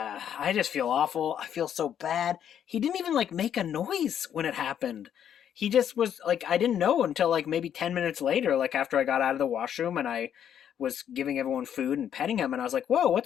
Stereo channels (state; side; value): quieter; right; 9.3 dB